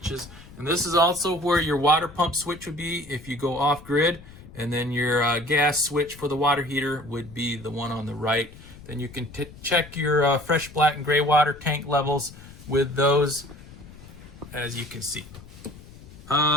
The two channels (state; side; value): noise; left; rumble, 18 dB below the sound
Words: And this is also where your water pump switch would be if you go off grid. And then your gas switch for the water heater would be the one on the right. Then you can check your fresh black and gray water tank levels with those, as you can see.